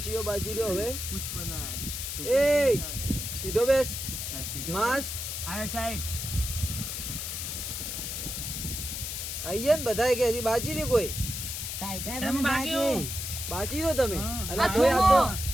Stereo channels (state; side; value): noise; left; hiss, 5 dB below the sound